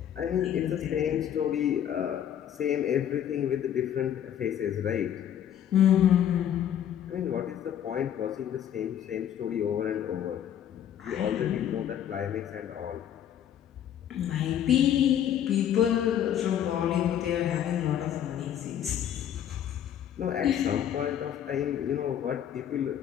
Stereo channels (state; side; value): quieter; right; 10.0 dB